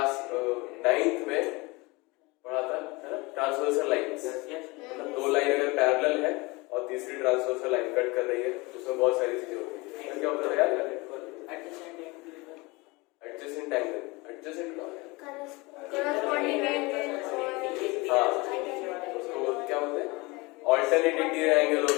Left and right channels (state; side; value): quieter; right; 24.7 dB